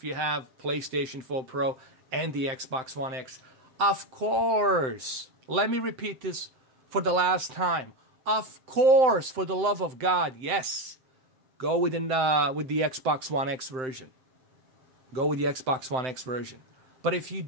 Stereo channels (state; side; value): late; left; 7.8 ms